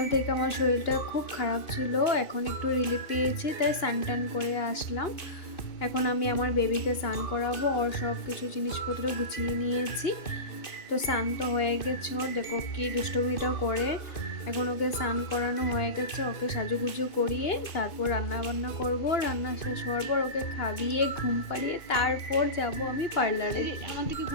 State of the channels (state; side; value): late; right; 2.9 ms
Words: থেকে আমার শরীরটা খুব খারাপ ছিল, এখন একটু রিলিফ পেয়েছি, তাই স্নান করে আসলাম। এখন আমি আমার বেবিকে স্নান করাবো, ওর সব কিছু জিনিসপত্র গুছিয়ে নিয়েছি। তো স্নান তো হয়ে গেছে, দেখো কি দুষ্টমিটাও করে। এখন ওকে স্নান করানো হয়ে গেছে, ওকে সাজুগুজু করিয়ে তারপর রান্না বান্না করবো। রান্না শেষ হওয়ার পর ওকে খাইয়ে ঘুম পাড়িয়ে তারপর যাব আমি পার্লারে। আমার দিকে